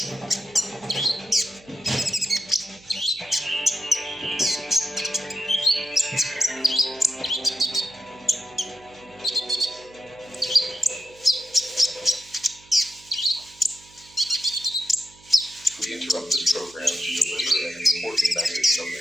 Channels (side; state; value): right; noise; hum, 26 dB below the sound